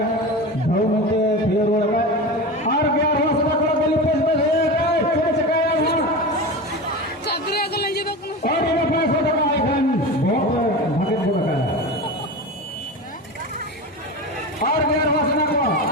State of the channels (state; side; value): normal; both; correlation 0.26